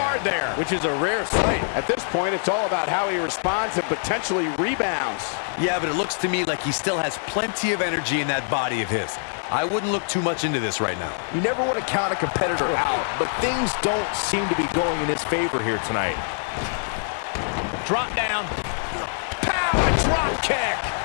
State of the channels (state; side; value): silent; right; 62 dB below the other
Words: there. Which is a rare sight. At this point, it's all about how he responds and potentially rebounds. Yeah, but it looks to me like he still has plenty of energy in that body of his. I wouldn't look too much into this right now. You never want to count a competitor out, but things don't seem to be going in his favor here tonight. Drop down. Pow, a drop kick.